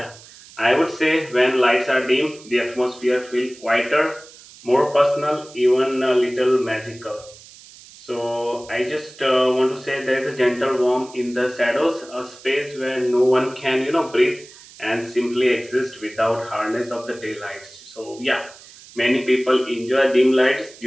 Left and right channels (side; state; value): right; noise; hiss, 21 dB below the sound